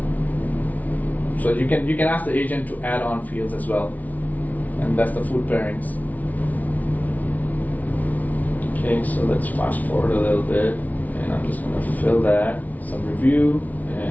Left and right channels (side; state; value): right; late; 0.075 ms